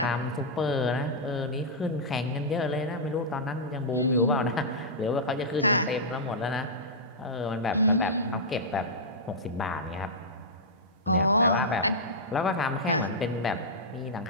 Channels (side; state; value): both; normal; correlation -0.11